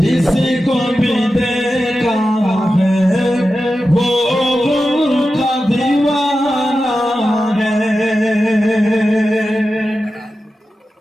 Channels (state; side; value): normal; both; correlation 0.92